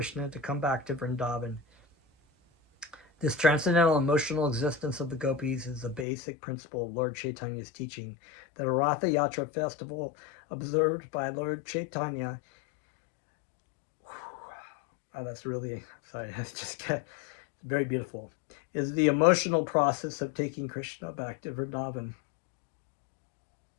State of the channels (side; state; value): right; drops out; at 6.1 s